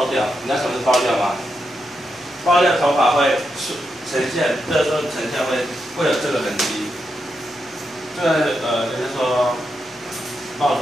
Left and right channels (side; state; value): both; normal; correlation 0.85